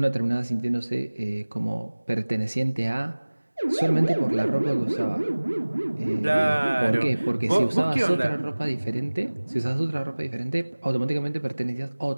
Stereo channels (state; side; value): inverted; both; correlation -1.00